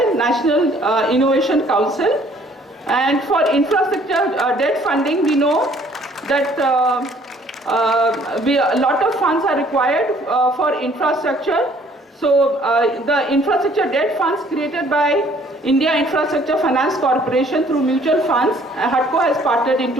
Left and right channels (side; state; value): both; normal; correlation 0.59